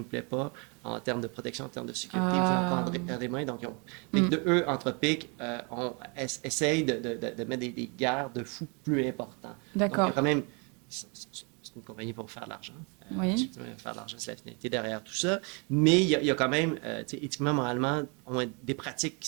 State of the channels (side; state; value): left; quieter; 33.5 dB